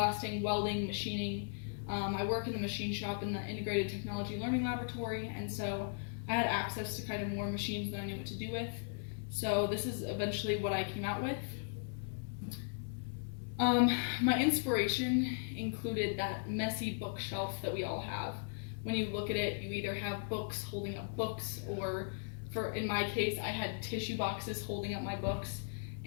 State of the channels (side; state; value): right; silent; 53 dB below the other